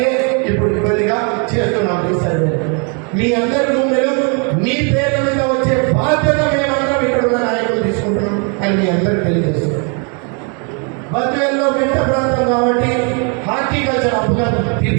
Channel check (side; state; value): left; quieter; 37.3 dB